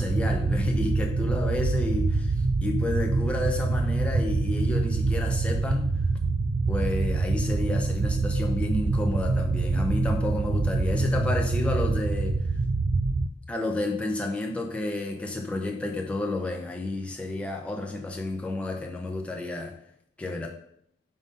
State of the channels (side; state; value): both; normal; correlation 0.84